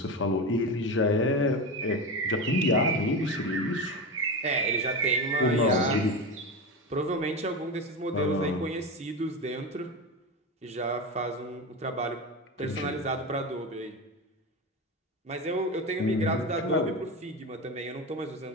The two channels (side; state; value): both; normal; correlation 0.21